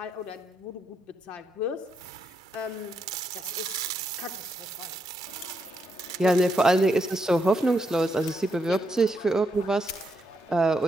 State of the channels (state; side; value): normal; both; correlation 0.80